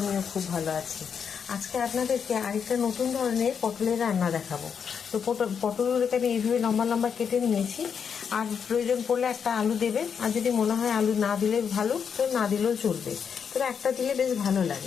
খুব ভালো আছি। আজকে আপনাদেরকে আরেকটা নতুন ধরনের পটলের রান্না দেখাবো। তো পটলগুলোকে আমি এইভাবে লম্বা লম্বা কেটে নিয়েছি। আর প্রয়োজন পড়লে একটা আলু দেবেন, আর যদি মনে হয় আলু না দিলে ভালো, তো না দিলেও চলবে, তবে একটা দিলে বেশ ভালো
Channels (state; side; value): quieter; right; 6.9 dB